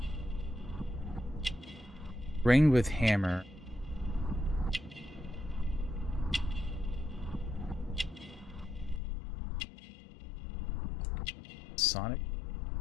Ring with hammer. Sonic.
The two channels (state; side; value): drops out; right; at 9.0 s